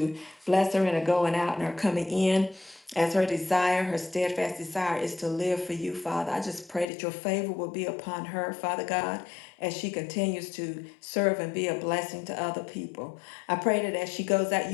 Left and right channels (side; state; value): right; drops out; at 6.9 s